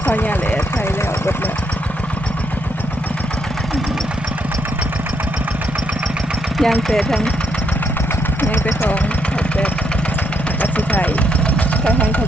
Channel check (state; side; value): normal; both; correlation 0.76